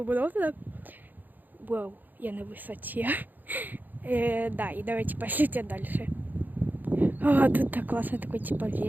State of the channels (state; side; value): late; left; 0.086 ms